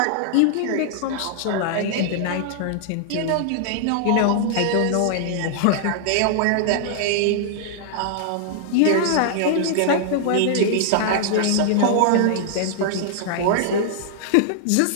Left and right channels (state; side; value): different; both; correlation -0.01